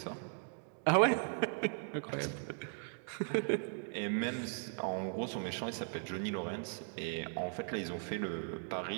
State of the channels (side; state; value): left; silent; 52 dB below the other